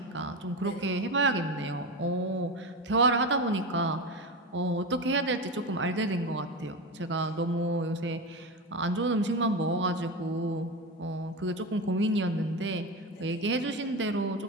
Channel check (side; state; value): both; normal; correlation 0.20